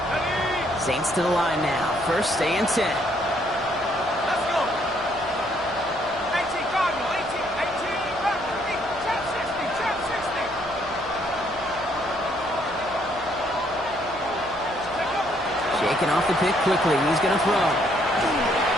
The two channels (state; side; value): noise; right; hum, 20 dB below the sound